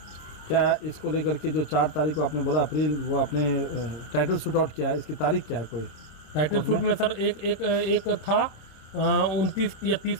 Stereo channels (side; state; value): right; late; 26 ms